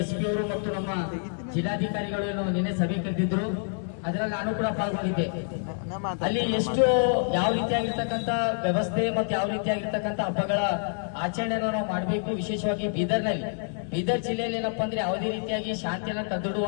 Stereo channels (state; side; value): silent; right; 60 dB below the other